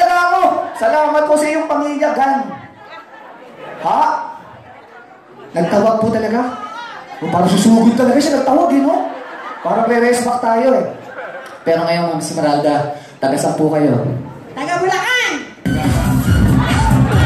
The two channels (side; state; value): both; identical; correlation 1.00